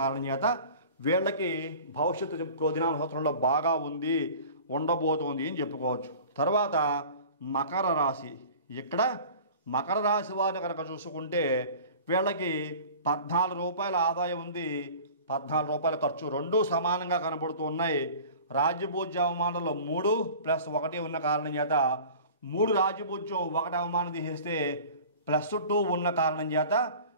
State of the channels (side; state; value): both; inverted; correlation -0.42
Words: కారణం చేత వీళ్ళకి భవిష్యత్తు క్రోధినామ సంవత్సరంలో బాగా ఉండబోతోంది అని చెప్పుకోవచ్చు. తర్వాత మకర రాశి. ఇక్కడ మకర రాశి వారిని కనుక చూసుకుంటే వీళ్ళకి 14 రూపాయల ఆదాయం ఉంది, 14 రూపాయల ఖర్చు, రెండూ సమానంగా కనబడుతూ ఉన్నాయి. రాజ్యభూజ్య అవమానంలో 3 + 1 ఉన్న కారణం చేత 3 రాజ్యభూజ్యం, 1 అవమానం తీసేస్తే +2 ఉన్న కారణం చేత